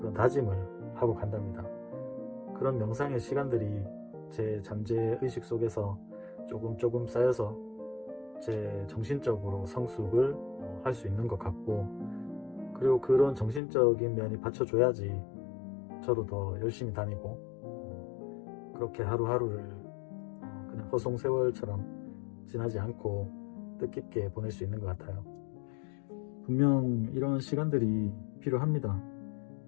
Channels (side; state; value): right; drops out; at 13.6 s